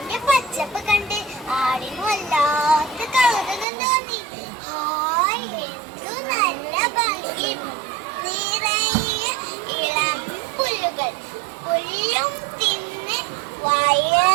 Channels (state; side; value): drops out; left; at 3.7 s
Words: പച്ചപ്പ് കണ്ട് ആടിന് വല്ലാത്ത കൗതുകം തോന്നി. ഹായ്, എന്തു നല്ല ഭംഗി! നിറയെ ഇളം പുല്ലുകൾ. പുല്ലും തിന്ന്